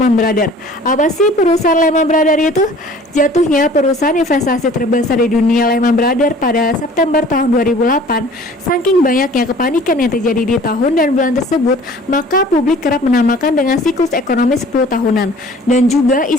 Brothers. Apa sih perusahaan Lehman Brothers itu? Jatuhnya perusahaan investasi terbesar di dunia Lehman Brothers pada September tahun 2008. Saking banyaknya kepanikan yang terjadi di tahun dan bulan tersebut, maka publik kerap menamakan dengan siklus ekonomi 10 tahunan dan juga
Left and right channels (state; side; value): normal; both; correlation 0.49